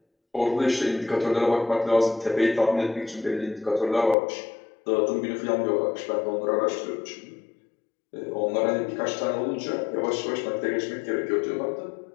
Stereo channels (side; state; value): right; drops out; at 4.2 s